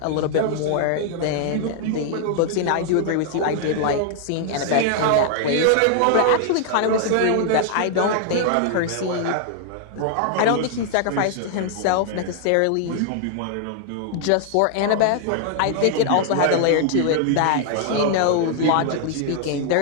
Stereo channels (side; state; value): both; different; correlation 0.00